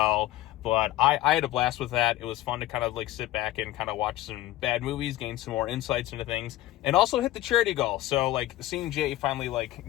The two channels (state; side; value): quieter; right; 15.5 dB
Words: But I had a blast with that. It was fun to kind of like sit back and kind of watch some bad movies, gain some more insights into things, and also hit the charity goal. So like seeing Jay finally